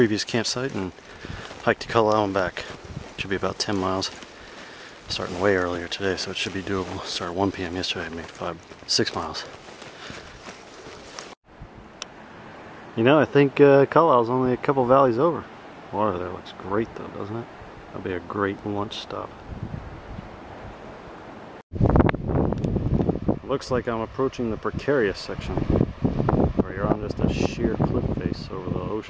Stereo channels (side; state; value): both; identical; correlation 1.00